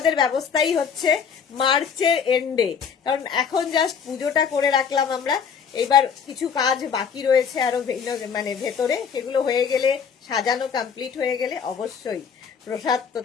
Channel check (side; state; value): right; quieter; 6.8 dB